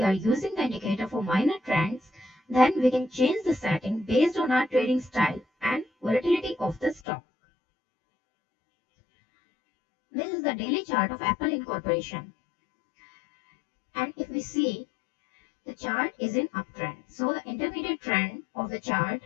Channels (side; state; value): right; drops out; at 7.0 s